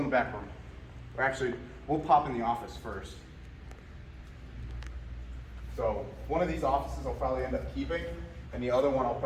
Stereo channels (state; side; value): identical; both; correlation 1.00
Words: the back room. Or actually, we'll pop in the office first. So one of these offices I'll probably end up keeping, and the other one I'll